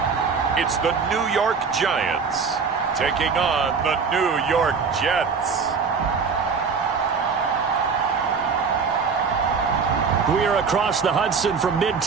It's the New York Giants taking on the New York Jets. We are across the Hudson from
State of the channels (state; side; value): quieter; left; 5.5 dB